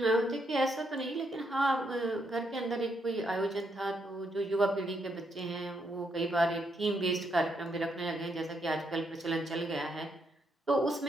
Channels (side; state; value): both; normal; correlation 0.77